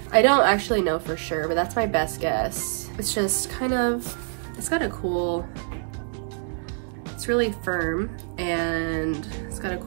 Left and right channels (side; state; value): left; silent; digital silence